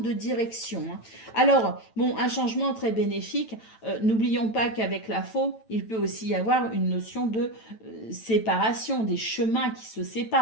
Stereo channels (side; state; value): right; late; 9.0 ms